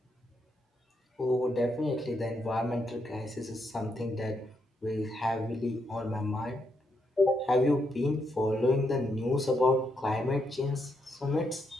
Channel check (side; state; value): both; normal; correlation 0.79